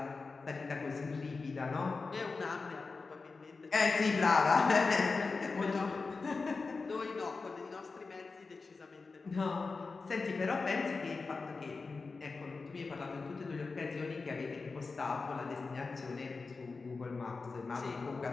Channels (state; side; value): quieter; right; 4.2 dB